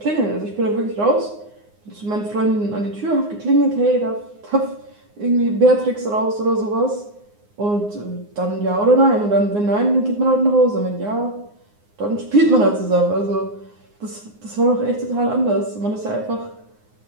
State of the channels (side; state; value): left; late; 9.7 ms